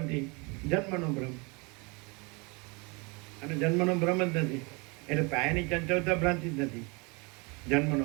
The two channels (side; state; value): left; quieter; 29.2 dB